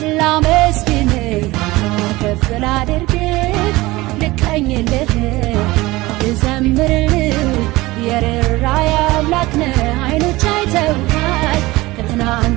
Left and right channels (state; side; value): quieter; left; 20.1 dB